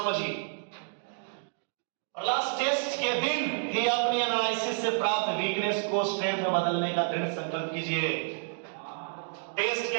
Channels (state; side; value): silent; left; digital silence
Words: और लास्ट टेस्ट के दिन ही अपनी एनालिसिस से प्राप्त वीकनेस को स्ट्रेंथ में बदलने का दृढ़ संकल्प कीजिए। टेस्ट